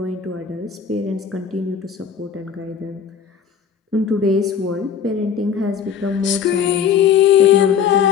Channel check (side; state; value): right; quieter; 7.5 dB